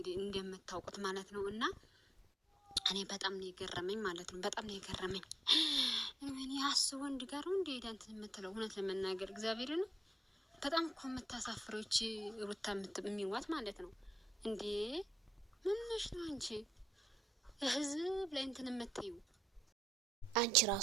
እንደምታውቁት ማለት ነው። እና እኔ በጣም ነው የገረመኝ ማለት ነው። በጣም ነው የገረመኝ። እኔ አስቦ ወንድ ጋር ነው እንደ ሄዳ እንትን የምትለው እውነት ለመናገር እግዚአብሔርን በጣም እኮ የምታሳፍሮች ሩታ የሚዋት ማለት ነው። እንዴ ምን ነሽ ነው አንቺ ህዝብ ላይ እንትን የምትዩ? አንቺ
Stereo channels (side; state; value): both; normal; correlation 0.81